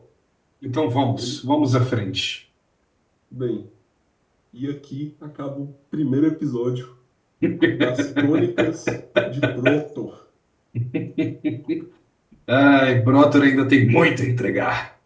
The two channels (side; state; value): both; identical; correlation 1.00